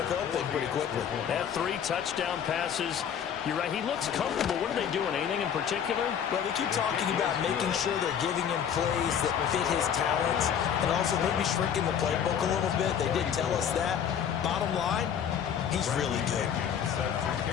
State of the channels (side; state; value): right; quieter; 8.4 dB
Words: thing pretty quickly. Had 3 touchdown passes. You're right, he looks comfortable. What are they doing, anything in particular? Well, they keep talking about making sure they're giving him plays that fit his talents and also maybe shrinking the playbook a little bit. They did tell us that. Bottom line, he's really good.